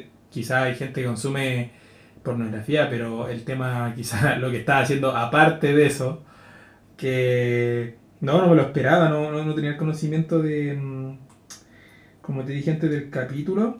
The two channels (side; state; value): both; identical; correlation 1.00